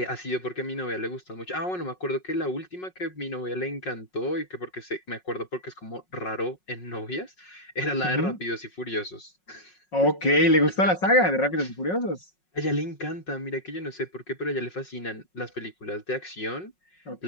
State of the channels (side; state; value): right; late; 5.5 ms